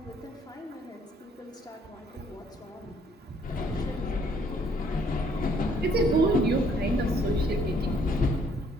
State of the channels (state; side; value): normal; both; correlation 0.64